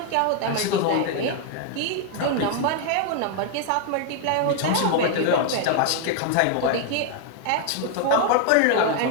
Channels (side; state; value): both; different; correlation 0.00